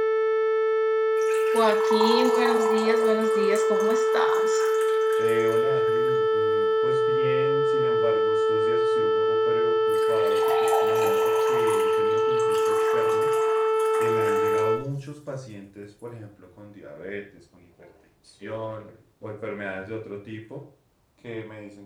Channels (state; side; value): identical; both; correlation 1.00